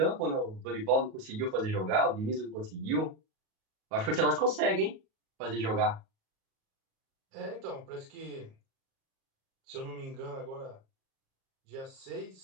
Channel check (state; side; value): late; left; 37 ms